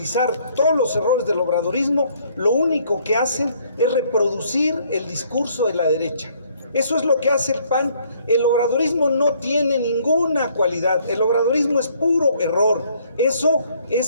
todos los errores del obradorismo, lo único que hacen es reproducir el discurso de la derecha. Eso es lo que hace el PAN. El obradorismo no tiene ninguna cualidad, el obradorismo es puro error. Eso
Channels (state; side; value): inverted; both; correlation -0.64